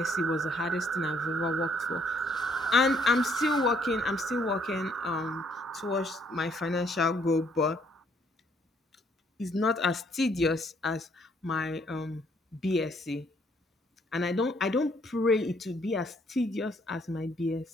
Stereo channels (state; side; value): normal; both; correlation 0.67